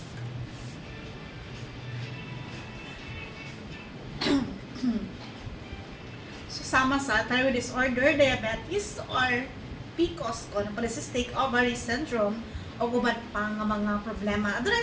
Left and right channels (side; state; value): both; identical; correlation 1.00